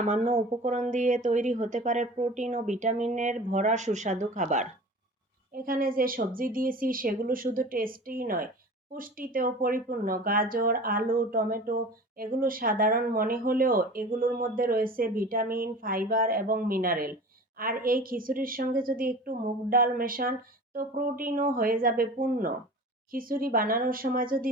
উপকরণ দিয়ে তৈরি হতে পারে প্রোটিন ও ভিটামিনের ভরা সুস্বাদু খাবার। এখানে যে সবজি দিয়েছি সেগুলো শুধু টেস্টিই নয়, পুষ্টিতেও পরিপূর্ণ। গাজর, আলু, টমেটো এগুলো সাধারণ মনে হলেও এগুলোর মধ্যে রয়েছে ভিটামিন, ফাইবার এবং মিনারেল। আর এই খিচুড়ির সঙ্গে যদি একটু মুগ ডাল মেশান তো প্রোটিনও হয়ে যাবে পূর্ণ। খিচুড়ি বানানোর সময় যদি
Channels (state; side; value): normal; both; correlation 0.38